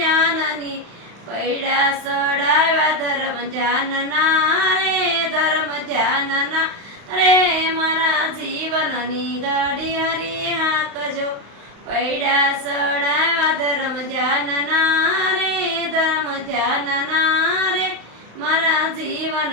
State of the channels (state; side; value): late; left; 35 ms